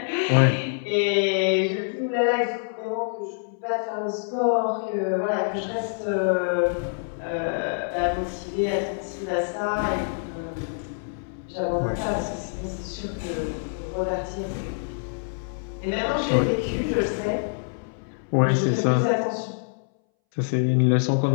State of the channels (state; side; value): silent; right; 61 dB below the other